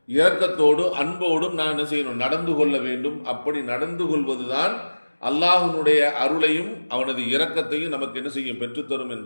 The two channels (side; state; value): both; inverted; correlation -1.00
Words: இரக்கத்தோடு அன்போடும் நான் என்ன செய்யணும், நடந்து கொள்ள வேண்டும். அப்படி நடந்து கொள்வதுதான் அல்லாஹ்வுடைய அருளையும் அவனது இரக்கத்தையும் நமக்கு என்ன செய்யும், பெற்றுத்தரும்